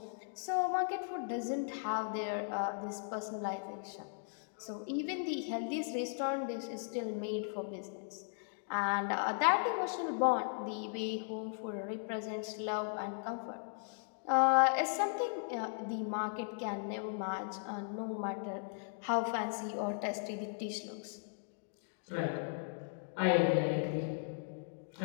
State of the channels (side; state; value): right; silent; digital silence